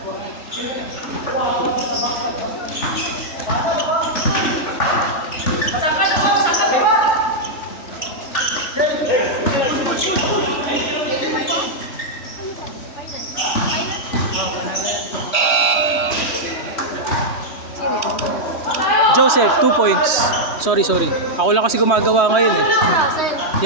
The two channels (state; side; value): late; right; 3.0 ms